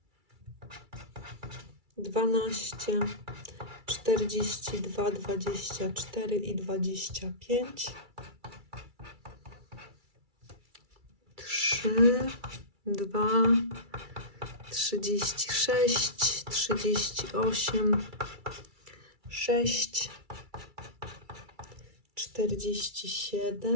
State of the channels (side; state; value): left; late; 2.3 ms